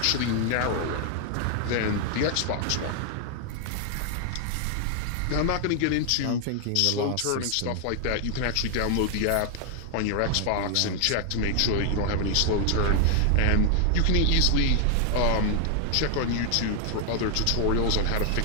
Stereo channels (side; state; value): both; different; correlation 0.00